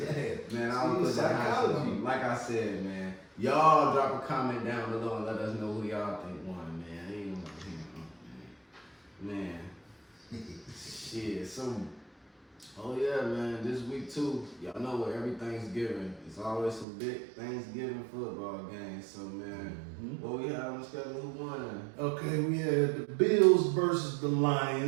ass. Man, I don't put that psychology. Like I said, man, y'all drop a comment down below and let us know who y'all think won, man. Ain't man. Shit, so, oh yeah, man, this week too, y'all know what every Thanksgiving, it's always some big Thanksgiving football games, so man, what we have on the schedule, who won? Okay, we had the Bills versus the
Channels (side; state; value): left; drops out; at 16.9 s